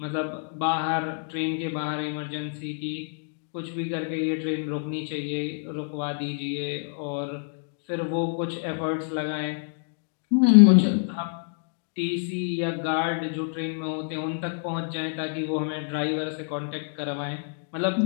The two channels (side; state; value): right; silent; 60 dB below the other